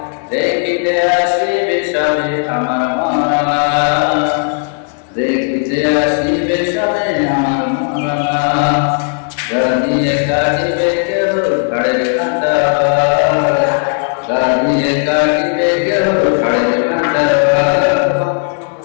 দেখিতে আসিবে সবে আমার মরা, দেখিতে আসিবে সবে আমার মরা, দাবিয়ে কাটিবে কেহ ঘরের কাঁচা, দাবিয়ে কাটিবে কেহ ঘরের কাঁচা।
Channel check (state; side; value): silent; right; 57 dB below the other